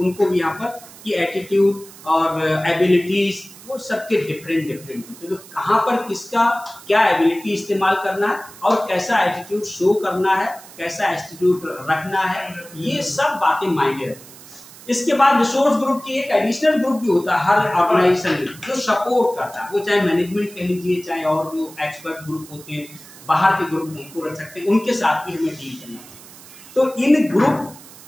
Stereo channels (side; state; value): right; noise; hiss, 19 dB below the sound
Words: भी यहाँ पर की एटीट्यूड और एबिलिटीज, वो सबके डिफरेंट होते हैं। तो कहाँ पर किसका क्या एबिलिटी इस्तेमाल करना है और कैसा एटीट्यूड शो करना है, कैसा एटीट्यूड रखना है, ये सब बातें मायने रखती हैं। इसके बाद रिसोर्स ग्रुप की एक एडिशनल ग्रुप भी होता है हर ऑर्गेनाइजेशन में, जो सपोर्ट करता है, वो चाहे मैनेजमेंट कह लीजिए, चाहे और जो एक्सपर्ट ग्रुप होते हैं, बाहर के ग्रुप उनको रख सकते हैं, उनके साथ भी हमें डील करना चाहिए। तो इन ग्रुप